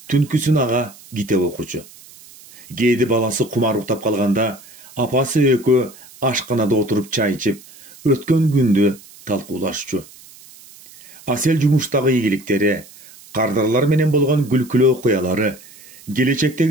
түнкүсүн ага китеп окучу. Кээде баласы кумар уктап калганда, апасы экөө ашканада отуруп чай ичип, өткөн күндү талкуулашчу. Асел жумуштагы ийгиликтери, кардарлар менен болгон күлкүлүү окуялары,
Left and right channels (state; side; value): noise; right; hiss, 22 dB below the sound